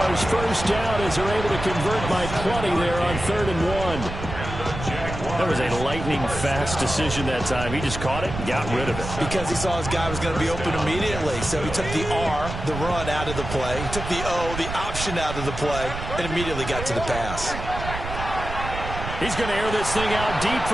1st down as they're able to convert by 20 there on 3rd and 1. That was a lightning-fast decision that time. He just caught it and got rid of it. Because he saw his guy was going to be open immediately. So he took the R, the run, out of the play. He took the O, the option, out of the play, and immediately got to the pass. He's going to air this thing out deep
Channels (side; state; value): right; noise; rumble, 7 dB below the sound